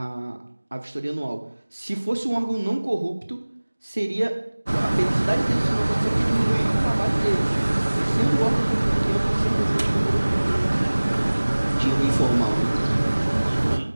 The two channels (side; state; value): both; inverted; correlation -1.00